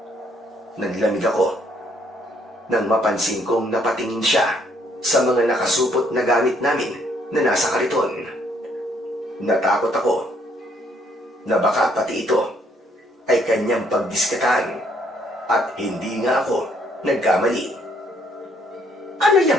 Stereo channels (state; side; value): normal; both; correlation 0.68